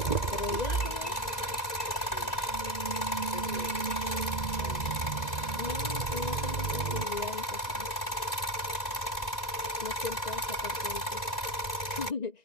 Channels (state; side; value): late; right; 1.9 ms